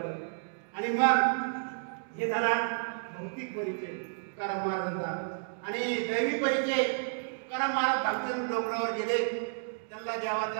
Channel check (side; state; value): left; silent; digital silence